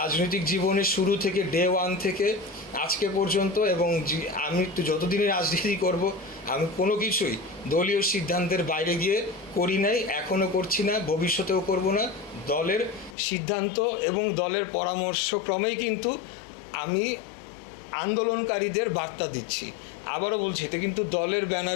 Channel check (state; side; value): drops out; right; at 13.2 s